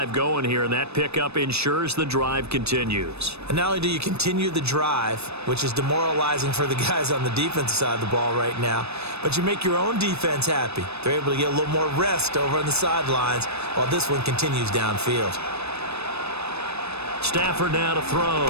going here, and that pickup ensures the drive continues. And not only do you continue the drive, which is demoralizing for the guys on the defensive side of the ball right now, but you make your own defense happy. They're able to get a little more rest over on the sidelines while this one continues downfield. Stafford now to throw.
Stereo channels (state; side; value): late; left; 0.79 ms